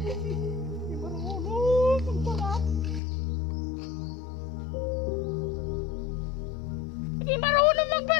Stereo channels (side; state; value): right; drops out; at 3.0 s